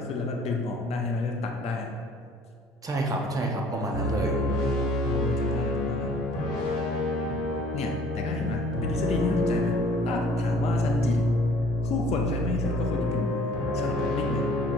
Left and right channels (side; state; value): both; normal; correlation 0.54